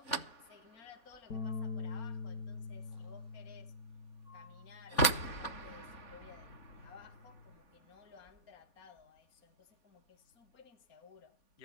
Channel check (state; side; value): late; right; 4.2 ms